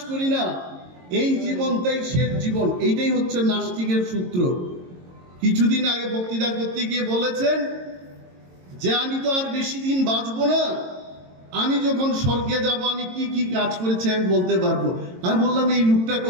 করি না, এই জীবনটাই শেষ জীবন। এইটাই হচ্ছে নাস্তিকের সূত্র। কিছুদিন আগে বক্তৃতা করতে গিয়ে বলেছেন যে আমি তো আর বেশি দিন বাঁচবো না, আমি যখন স্বর্গে যাব আমি কি কি কাজ করেছি আমি বলতে পারবো। আমি বললাম, এই লোকটা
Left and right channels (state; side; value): late; left; 22 ms